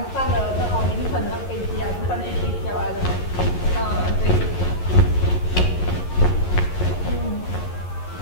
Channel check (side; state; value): right; late; 11 ms